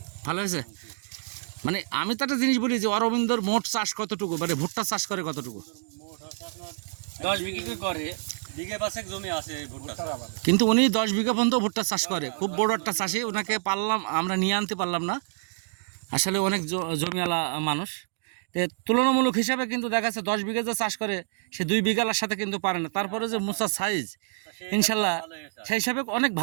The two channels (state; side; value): silent; left; digital silence